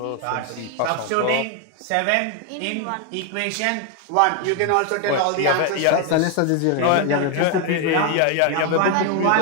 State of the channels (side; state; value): both; different; correlation 0.01